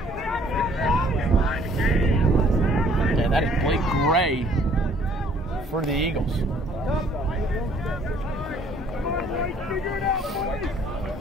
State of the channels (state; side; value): normal; both; correlation 0.59